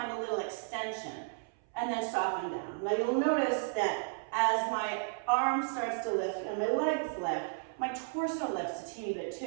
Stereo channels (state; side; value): silent; left; 55 dB below the other